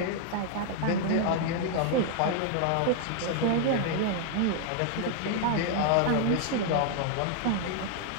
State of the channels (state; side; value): different; both; correlation 0.00